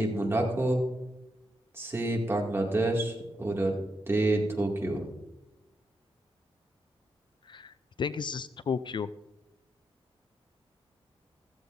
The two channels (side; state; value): both; normal; correlation 0.82